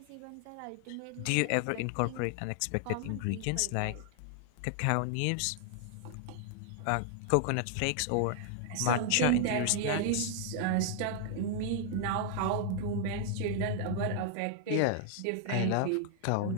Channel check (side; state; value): both; different; correlation 0.00